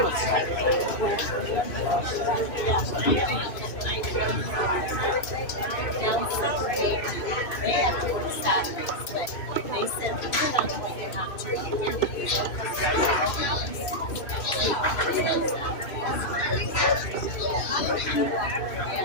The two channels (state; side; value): late; right; 2.5 ms